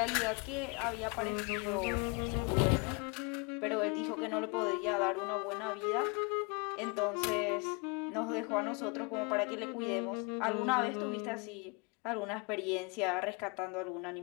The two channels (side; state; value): right; quieter; 30.4 dB